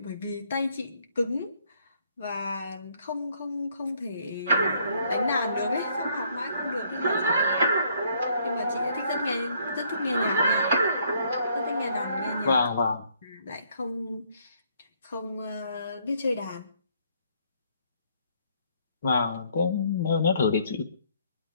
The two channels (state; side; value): inverted; both; correlation -0.67